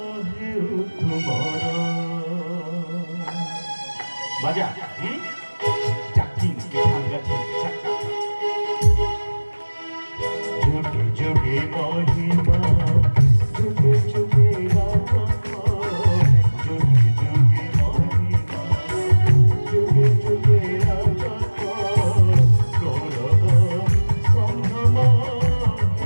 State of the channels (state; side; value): inverted; both; correlation -1.00